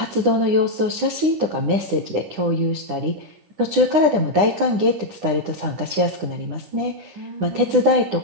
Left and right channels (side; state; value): left; late; 9.9 ms